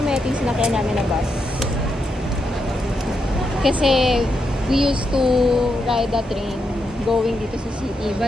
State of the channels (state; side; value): normal; both; correlation 0.83